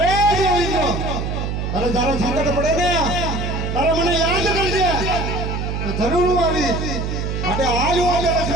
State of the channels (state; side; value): noise; right; hum, 2 dB below the sound